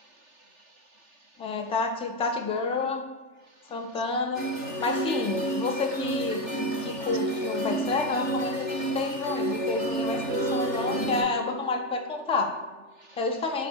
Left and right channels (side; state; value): left; late; 3.4 ms